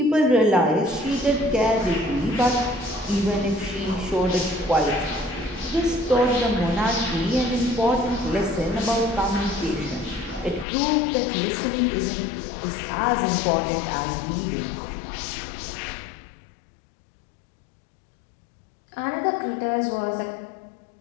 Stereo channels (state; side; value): drops out; right; at 10.7 s